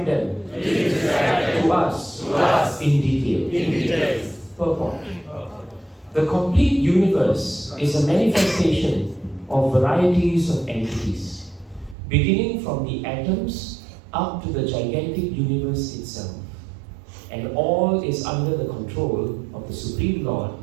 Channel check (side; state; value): left; drops out; at 12.0 s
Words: them to us in detail. Purport. The complete universe is a manifestation of varieties of entities, beginning from the atoms up to the gigantic universe itself. And all is under the control of the Supreme Lord